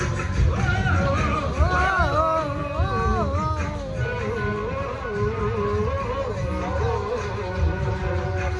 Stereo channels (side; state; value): both; identical; correlation 1.00